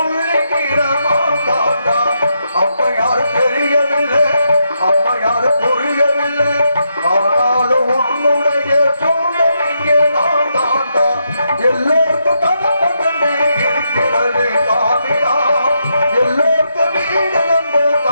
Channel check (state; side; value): inverted; both; correlation -0.81